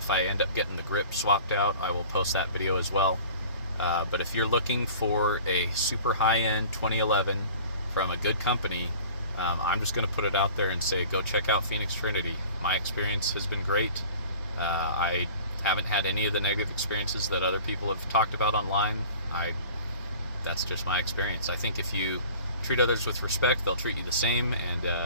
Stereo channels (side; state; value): both; inverted; correlation -0.44